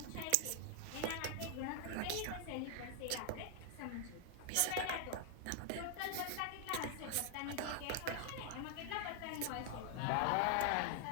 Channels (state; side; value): different; both; correlation 0.00